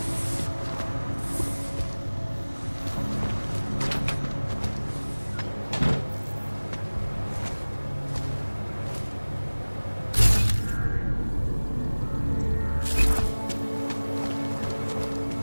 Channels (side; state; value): both; inverted; correlation -1.00